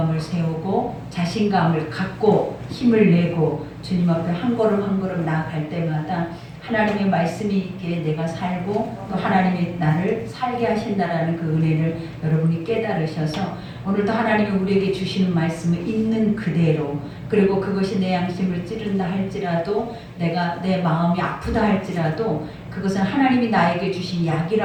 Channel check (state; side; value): identical; both; correlation 1.00